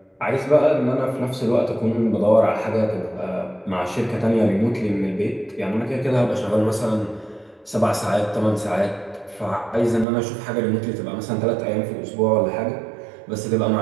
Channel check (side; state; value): left; drops out; at 10.1 s